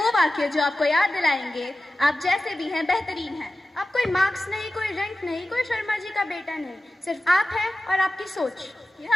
वाक्य जो आपको याद दिलाएंगे आप जैसे भी हैं बेहतरीन हैं। अब कोई मार्क्स नहीं, कोई रैंक नहीं, कोई शर्मा जी का बेटा नहीं, सिर्फ आप हैं और आपकी सोच। यह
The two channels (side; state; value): both; normal; correlation 0.95